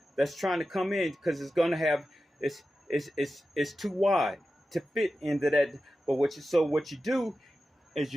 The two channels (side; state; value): both; normal; correlation 0.93